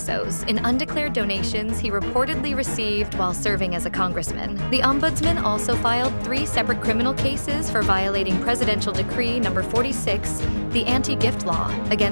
in undeclared donations he reportedly received while serving as a congressman. The Ombudsman also filed 3 separate criminal cases for violating Presidential Decree No. 46, the anti-gift law,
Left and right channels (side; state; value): both; inverted; correlation -1.00